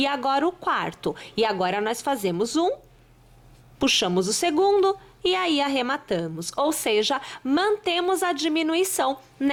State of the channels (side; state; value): both; identical; correlation 1.00